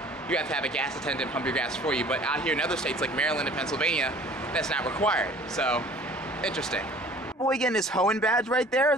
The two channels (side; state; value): both; normal; correlation 0.50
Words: you have to have a gas attendant pump your gas for you. But out here in other states like Maryland and Pennsylvania, that's not required. So interesting. Boy getting his Hoenn badge right there,